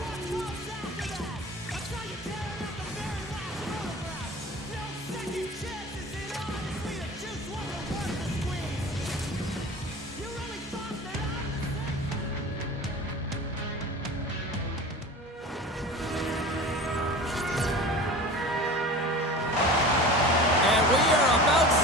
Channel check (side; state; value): both; normal; correlation 0.37